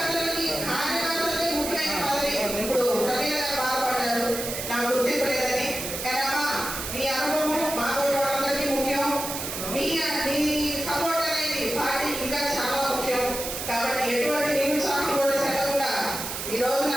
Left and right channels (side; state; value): right; noise; hiss, 5 dB below the sound